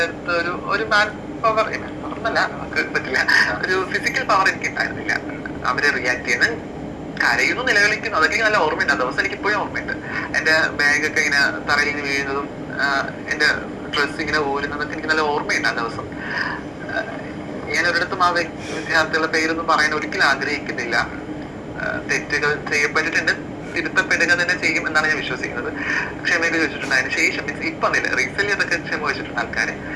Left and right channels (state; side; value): identical; both; correlation 1.00